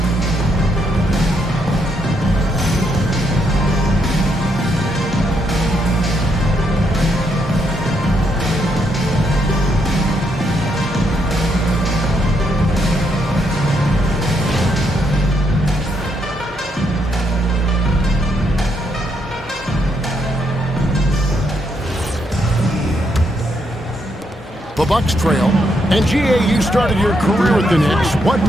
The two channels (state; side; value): normal; both; correlation 0.77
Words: The Bucks trail. And GA, you started your career with the Knicks. What